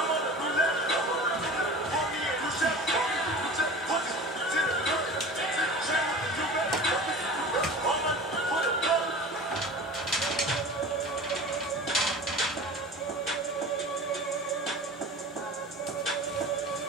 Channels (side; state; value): both; normal; correlation 0.37